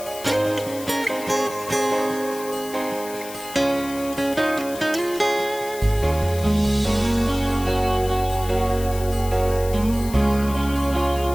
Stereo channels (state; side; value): noise; left; hiss, 14 dB below the sound